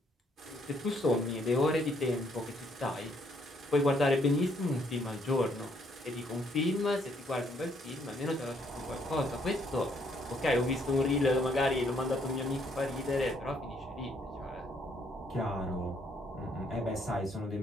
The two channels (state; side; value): normal; both; correlation 0.69